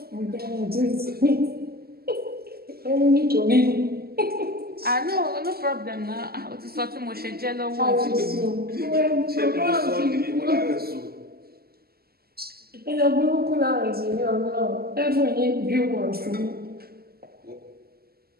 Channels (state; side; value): late; left; 0.45 ms